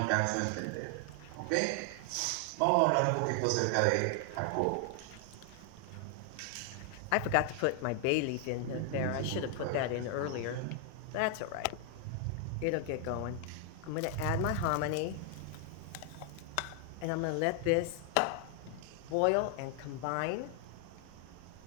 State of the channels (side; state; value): both; different; correlation 0.00